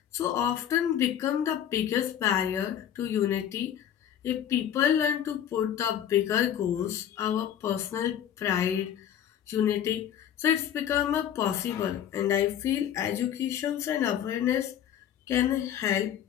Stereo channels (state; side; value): quieter; right; 9.9 dB